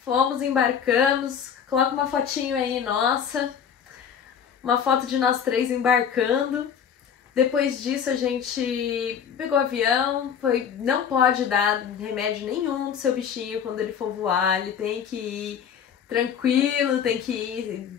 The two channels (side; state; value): right; quieter; 7.9 dB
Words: embarcamos. Coloca uma fotinho aí nossa, uma foto de nós 3 embarcando. Depois disso a gente pegou o avião, não pode dar remédio nenhum do seu bichinho quando ele for voar, ele tem que ir tranquilo, tem que